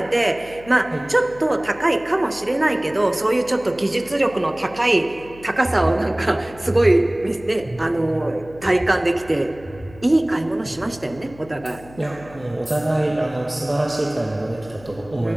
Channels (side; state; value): left; noise; hum, 21 dB below the sound